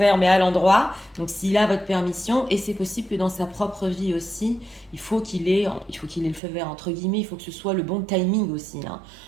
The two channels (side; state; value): left; drops out; at 6.4 s